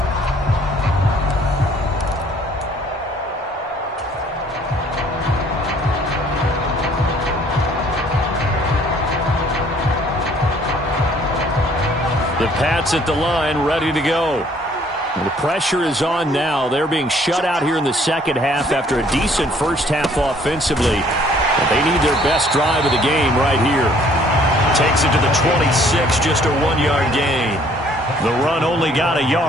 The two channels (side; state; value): both; normal; correlation 0.60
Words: The Pats at the line, ready to go. And the pressure is on now. They're being shut out here in the second half after a decent first half offensively. But they need their best drive of the game right here. Takes it to the 26, just a 1-yard gain. The run only got a